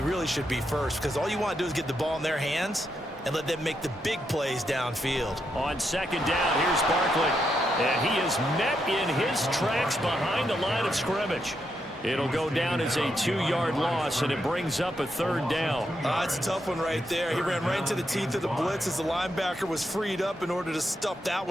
really should be 1st, because all you want to do is get the ball in their hands and let them make the big plays downfield. On 2nd down, here's Barkley. And he is met in his tracks behind the line of scrimmage. It'll go down as a 2-yard loss, and it brings up a 3rd down. It's a tough one right there. He ran right into the teeth of the blitz as the linebacker was freed up in order to stuff that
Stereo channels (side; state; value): both; normal; correlation 0.81